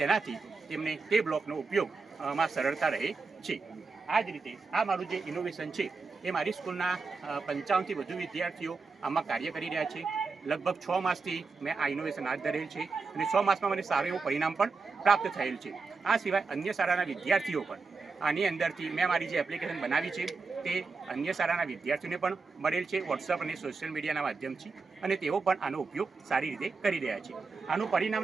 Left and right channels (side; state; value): left; quieter; 4.4 dB